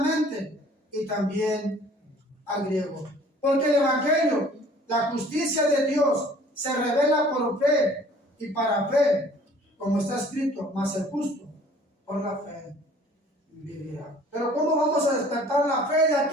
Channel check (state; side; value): normal; both; correlation 0.53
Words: y también al griego. Porque el evangelio, la justicia de Dios, se revela por fe y para fe, como está escrito, mas el justo por la fe vivirá. Pero ¿cómo vamos a despertar la fe de